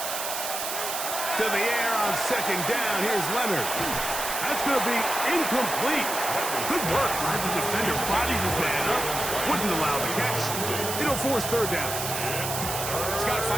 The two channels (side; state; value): right; noise; hiss, 4 dB below the sound